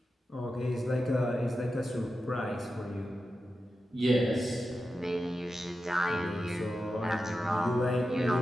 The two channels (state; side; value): normal; both; correlation 0.91